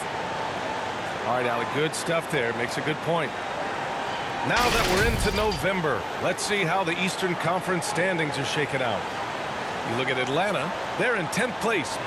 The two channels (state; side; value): identical; both; correlation 1.00